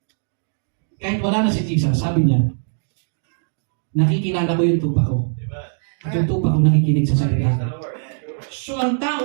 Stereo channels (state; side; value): silent; left; digital silence